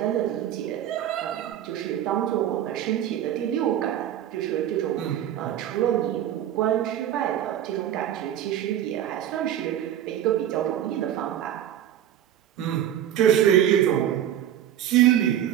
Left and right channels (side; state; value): left; quieter; 11.0 dB